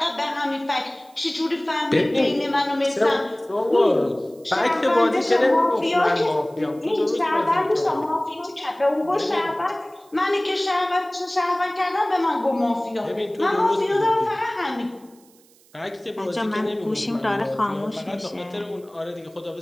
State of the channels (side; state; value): right; noise; hiss, 29 dB below the sound